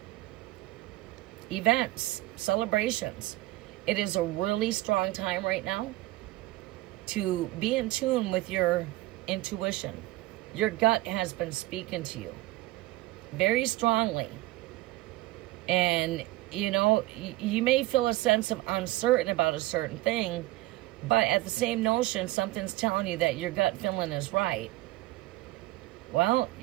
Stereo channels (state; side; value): quieter; left; 18.2 dB